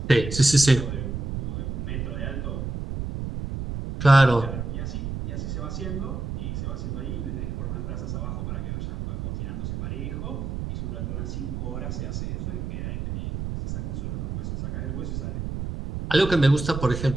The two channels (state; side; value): noise; right; rumble, 4 dB below the sound